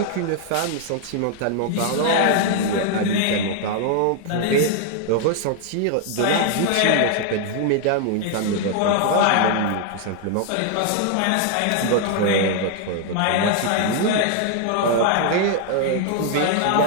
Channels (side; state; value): both; different; correlation 0.00